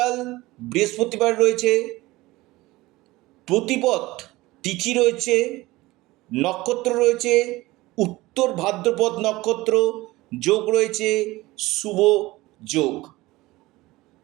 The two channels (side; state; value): left; quieter; 19.5 dB